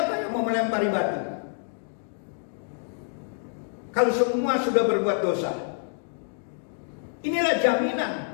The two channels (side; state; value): right; silent; digital silence